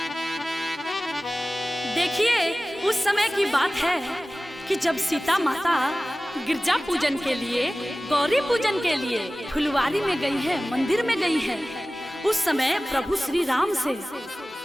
देखिए उस समय की बात है कि जब सीता माता गिरजा पूजन के लिए, गौरी पूजन के लिए फुलवारी में गई है, मंदिर में गई है। उस समय प्रभु श्री राम से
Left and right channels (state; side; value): normal; both; correlation 0.97